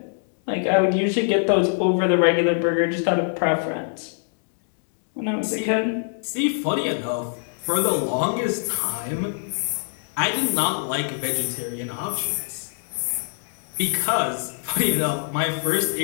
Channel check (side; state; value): right; silent; 63 dB below the other